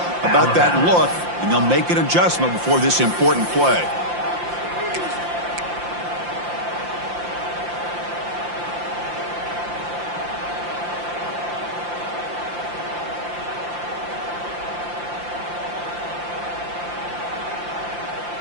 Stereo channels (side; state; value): left; late; 5.7 ms